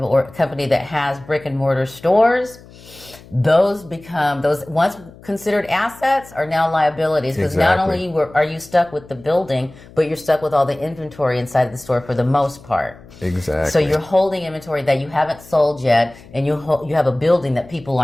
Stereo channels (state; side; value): noise; left; hum, 22 dB below the sound